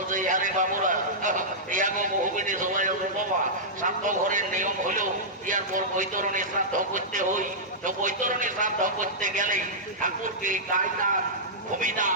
ইয়ারে বাবুরা ইয়াগো বহুবিধি সবাই বাবা শ্রাদ্ধ ঘরের নিয়ম হলো ইয়ার পর বৈতরণী শ্রাদ্ধ করতে হই তো বৈতরণী শ্রাদ্ধ করতে গেলে ঠাকুরকে গায়দান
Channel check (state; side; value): normal; both; correlation -0.13